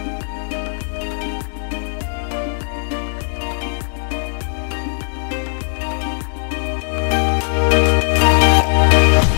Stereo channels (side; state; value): right; silent; 65 dB below the other